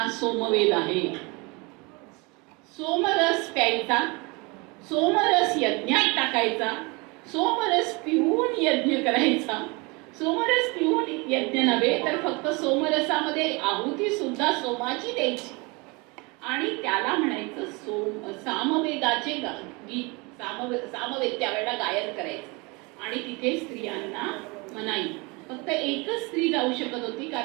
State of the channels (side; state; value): left; quieter; 27.5 dB